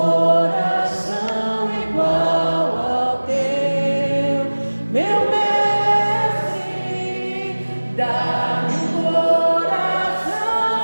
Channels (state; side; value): inverted; both; correlation -1.00